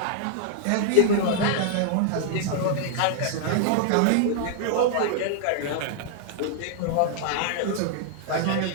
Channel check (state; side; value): different; both; correlation -0.01